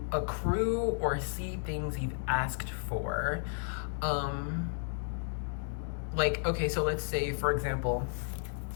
accrue or see things you've asked for. Like, okay, so let's say, for example,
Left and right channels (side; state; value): right; silent; digital silence